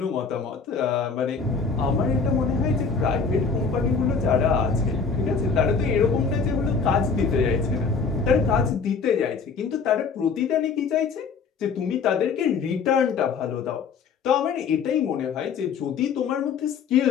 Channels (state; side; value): quieter; right; 5.4 dB